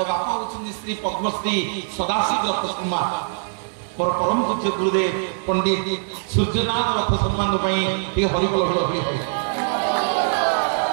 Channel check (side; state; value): left; silent; digital silence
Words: ବାପା ହେଉଛନ୍ତି ଶ୍ରୀ ପଦ୍ମଶ୍ରୀ ସଦାଶିବ ରଥ ଶର୍ମା ମୋର ପରମ ପୂଜ୍ୟ ଗୁରୁଦେବ ପଣ୍ଡିତ ସୂର୍ଯ୍ୟନାଥ ରଥ ସମ୍ମାନ ପାଇଁ ଟିକେ ହରିବୋଲ ହରି